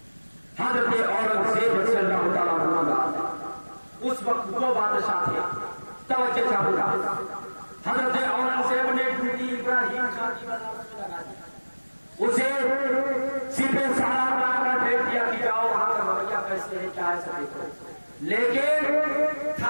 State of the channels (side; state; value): both; inverted; correlation -1.00